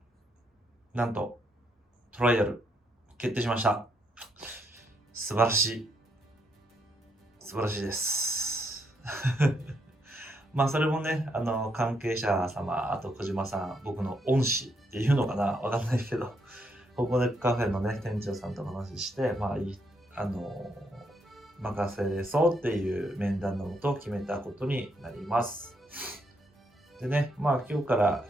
なんと、トライアル、決定しました。素晴らしい。素晴らしいです。まあ、それもね、関係者様、あと小島さん、僕の恩師っていうのかな、わかんないけど、ここでカフェのね、店長さんと話して、まあ、任せそうっていう面談のもと決めたことになります。でね、まあ今日から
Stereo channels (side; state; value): both; normal; correlation 0.76